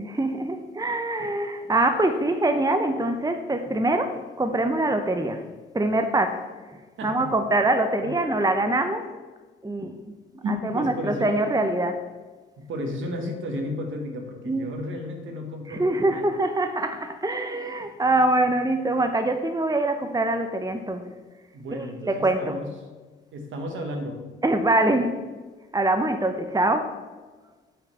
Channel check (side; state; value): both; normal; correlation 0.54